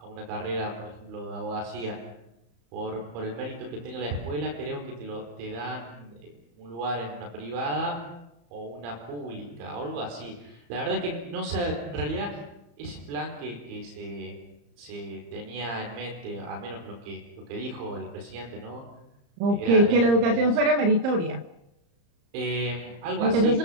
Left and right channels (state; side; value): late; left; 34 ms